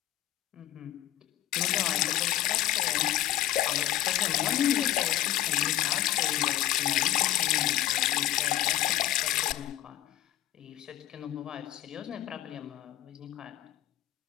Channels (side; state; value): right; quieter; 13.7 dB